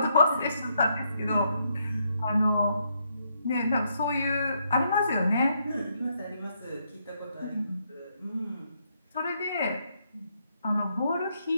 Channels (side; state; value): both; inverted; correlation -0.76